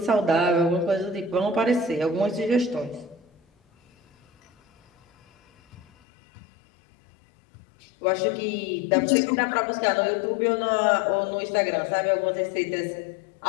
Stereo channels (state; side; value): drops out; right; at 5.9 s